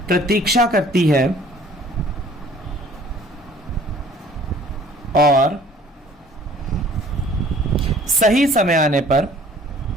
प्रतीक्षा करती है और सही समय आने पर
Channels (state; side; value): normal; both; correlation 0.53